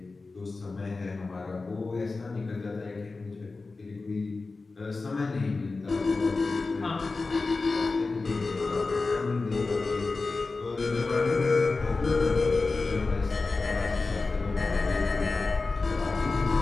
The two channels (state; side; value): quieter; right; 3.8 dB